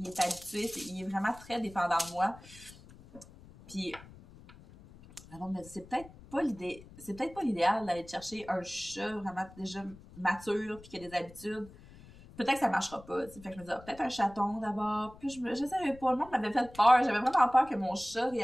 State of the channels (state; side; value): noise; left; rumble, 20 dB below the sound